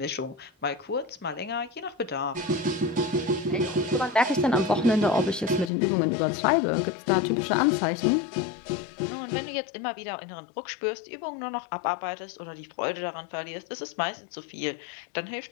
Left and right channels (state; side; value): drops out; right; at 5.7 s